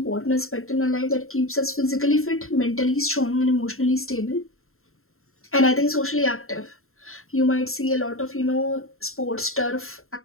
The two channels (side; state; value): right; late; 0.62 ms